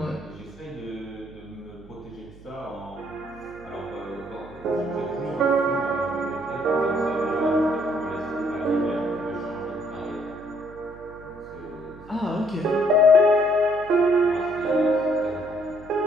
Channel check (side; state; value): right; noise; hum, 20 dB below the sound